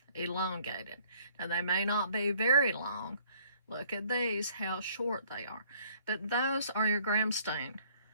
elongated. Now, they may not be very long. Look at these, how short they are. But those are your gram stain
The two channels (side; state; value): both; inverted; correlation -0.60